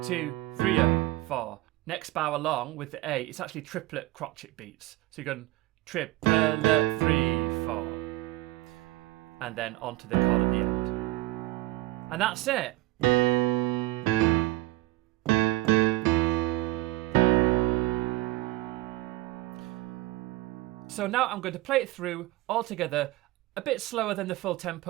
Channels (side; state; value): left; quieter; 18.7 dB